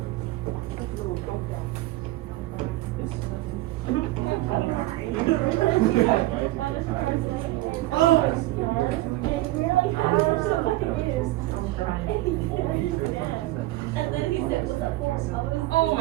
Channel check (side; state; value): left; quieter; 17.5 dB